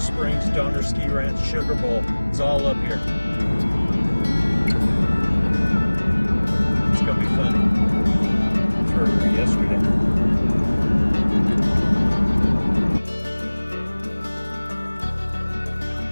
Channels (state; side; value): inverted; both; correlation -1.00